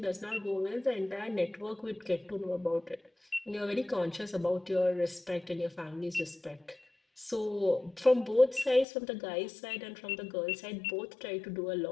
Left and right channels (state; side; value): drops out; right; at 8.8 s